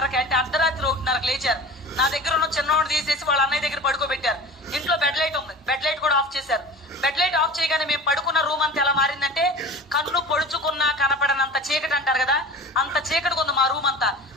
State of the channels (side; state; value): both; normal; correlation 0.38